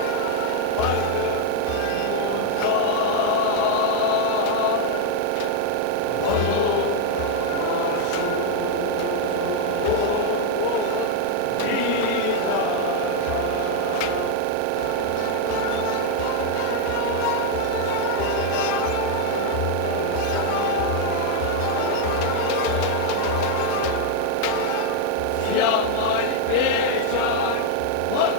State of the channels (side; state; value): both; different; correlation 0.00